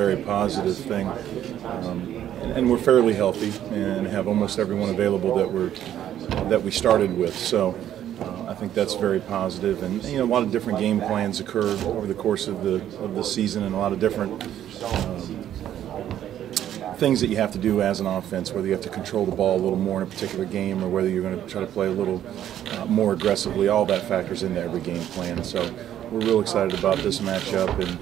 positive thing. And we're fairly healthy and have almost everyone available that we started with. So I think that's very positive. And a lot of different game plans occur over the course of the season, and a lot of different things that you have to do as an offense, whether you have to control the ball a little more in a particular game or whether you're going to try to play a little more aggressively. All that factors into every game plan. So we're real excited about this matchup and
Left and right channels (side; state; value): left; quieter; 11.2 dB